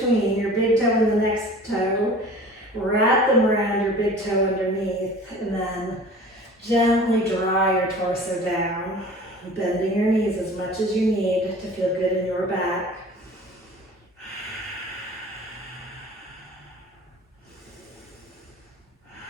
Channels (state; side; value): normal; both; correlation 0.43